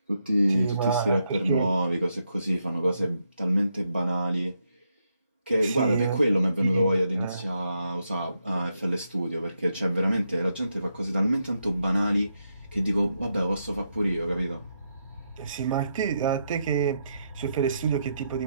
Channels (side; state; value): both; inverted; correlation -0.81